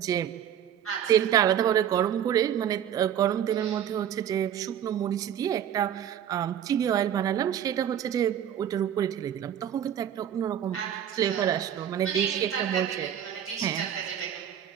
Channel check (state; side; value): quieter; left; 9.7 dB